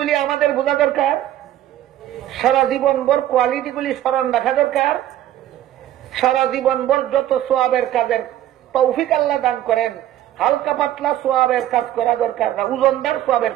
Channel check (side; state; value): left; quieter; 12.7 dB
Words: আমাদের বোঝা দরকার, সারা জীবন ভর কোয়ালিটিগুলি স্মরণ রাখা দরকার। সারা জীবন ভর যত সোয়াবের কাজের তৌফিক আল্লাহ দান করেন, হালকা পাতলা সোয়াবের কাজ করা দরকার না, ওজনদার সোয়াবের